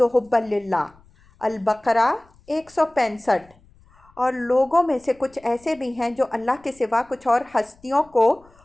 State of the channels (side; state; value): left; noise; rumble, 29 dB below the sound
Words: حُبًّا لِلَّهِ۔ البقرہ 165۔ اور لوگوں میں سے کچھ ایسے بھی ہیں جو اللہ کے سوا کچھ اور ہستیوں کو